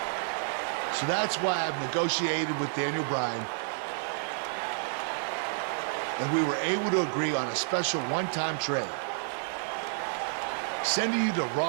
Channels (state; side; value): silent; left; digital silence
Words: So that's why I've negotiated with Daniel Bryan, and we were able to agree on a special one-time trade, sending you to